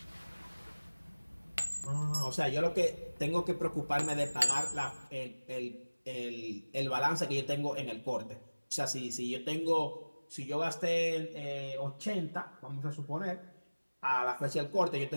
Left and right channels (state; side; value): inverted; both; correlation -1.00